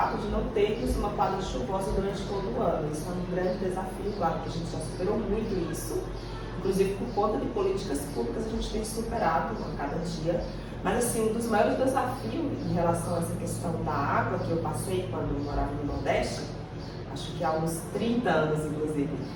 de não termos uma quadra chuvosa durante todo o ano. Isso é um grande desafio, claro que a gente já superou muito isso, inclusive por conta de políticas públicas a gente tem superado a cada dia. Mas assim, um dos maiores desafios em relação a essa questão da água que eu passei quando eu morava no Nordeste, acho que há uns 30 anos inclusive,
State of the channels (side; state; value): both; identical; correlation 1.00